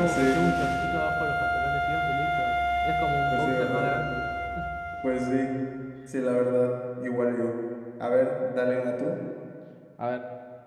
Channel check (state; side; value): identical; both; correlation 1.00